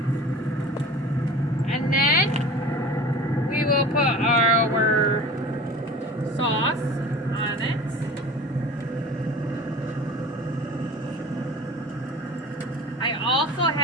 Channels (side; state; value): both; normal; correlation 0.39